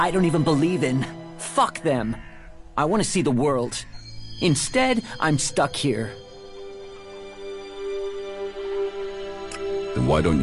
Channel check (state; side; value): identical; both; correlation 1.00